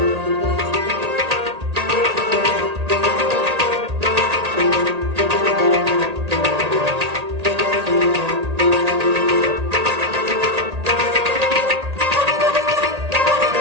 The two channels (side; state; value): left; late; 1.8 ms